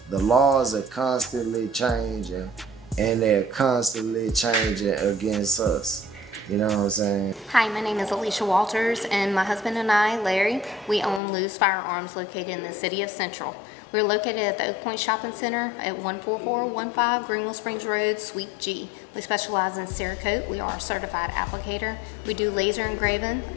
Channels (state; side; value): drops out; right; at 11.2 s